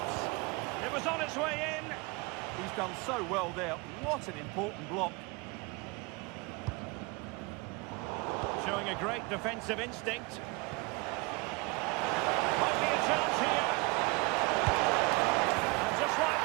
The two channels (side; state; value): left; quieter; 26.9 dB